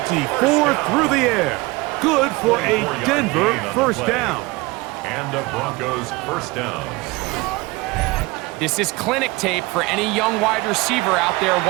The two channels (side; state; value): left; quieter; 22.9 dB